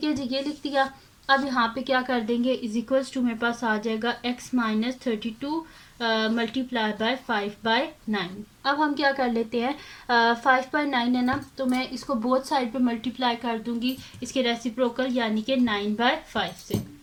है जी, ये लिख दिया। अब यहाँ पे क्या कर देंगे, इज इक्वल्स टू मेरे पास आ जाएगा x माइनस 32 मल्टीप्लाई बाय 5/9। अब हम क्या कर लेते हैं, 5/9 है ना, तो मैं इसको बोथ साइड पे मल्टीप्लाई कर दूंगी इसके रेसिप्रोकल, यानी कि 9/5 से।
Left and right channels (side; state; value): both; identical; correlation 1.00